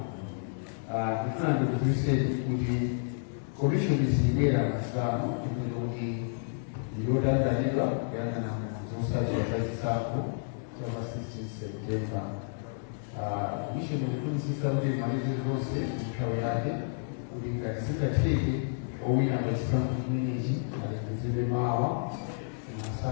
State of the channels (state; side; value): silent; right; digital silence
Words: Ndifuna ndikudziwitseni kuti commission sibwera masano kuti yotanganidwa kuyang'ana zotsatira zachisankho chapa 16 September. Commission ikufunitsitsa kuti malize zonse nthawi yake kuti ngati zingatheke owina pachisankho chimenechi alengezedwe mawa